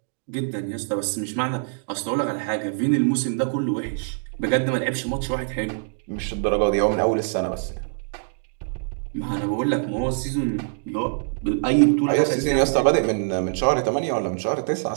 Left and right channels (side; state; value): left; silent; digital silence